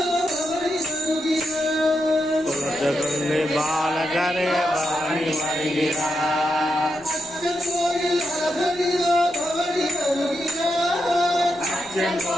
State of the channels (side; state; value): left; noise; rumble, 25 dB below the sound